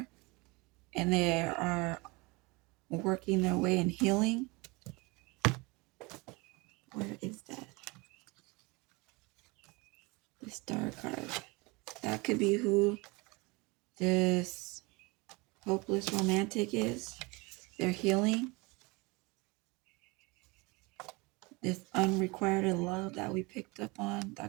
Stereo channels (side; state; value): left; quieter; 25.9 dB